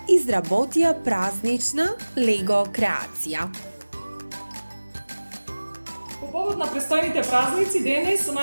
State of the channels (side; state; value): both; inverted; correlation -1.00